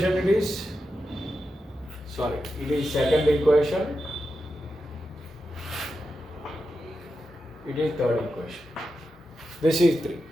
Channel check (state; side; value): normal; both; correlation 0.89